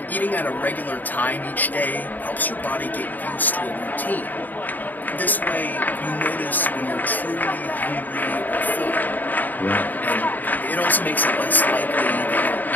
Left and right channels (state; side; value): late; right; 0.085 ms